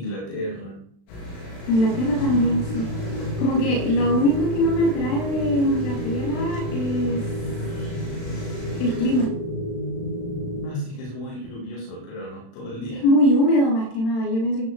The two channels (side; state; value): right; late; 36 ms